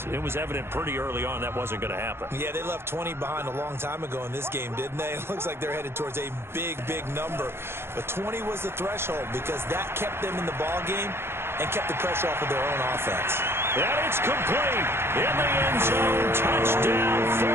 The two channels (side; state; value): left; late; 0.12 ms